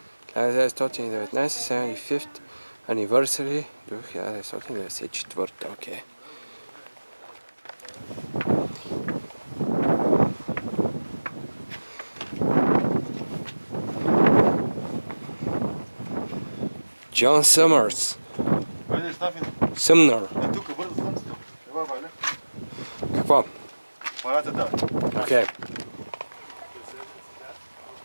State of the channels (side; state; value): both; inverted; correlation -1.00